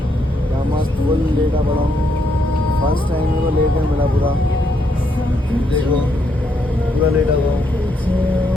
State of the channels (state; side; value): normal; both; correlation 0.76